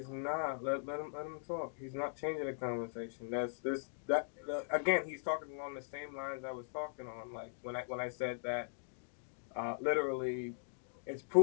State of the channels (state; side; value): silent; right; digital silence